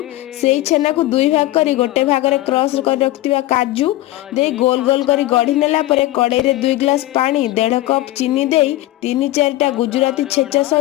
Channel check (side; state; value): right; quieter; 16.2 dB